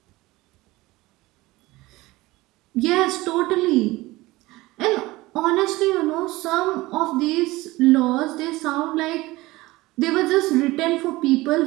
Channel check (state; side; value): quieter; left; 19.8 dB